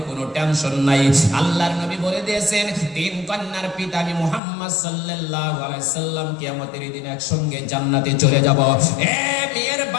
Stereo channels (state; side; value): drops out; right; at 4.4 s